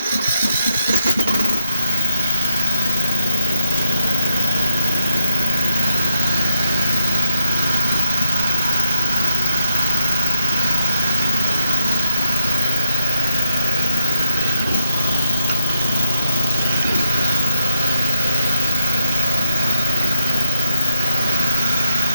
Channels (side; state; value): both; inverted; correlation -0.77